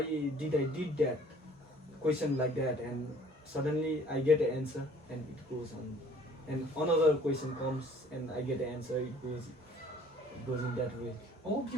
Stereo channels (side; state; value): both; normal; correlation 0.55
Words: did I did that question like that, and suddenly I get the answer, and it goes on, and another question comes, and I get the answer. It goes in that way. Oh,